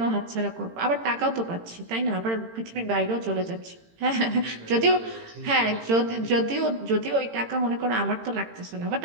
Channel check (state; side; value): late; left; 18 ms